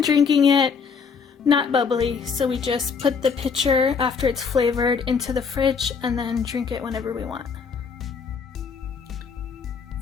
drinking it not bubbly, so we just put the pitcher after it's flavored into the fridge and then drink it whenever we want.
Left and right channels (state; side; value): quieter; right; 5.8 dB